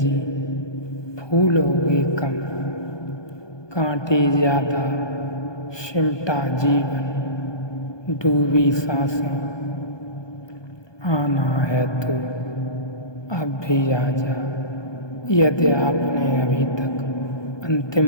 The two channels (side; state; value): right; late; 1.2 ms